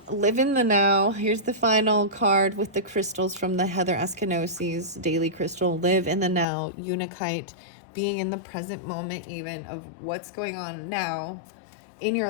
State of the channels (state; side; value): drops out; right; at 6.5 s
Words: live in the now. Here's the final card with the crystals from the Heather Askanosi's daily crystal. Live in the now, Unikite, being in the present moment even of what's going on now in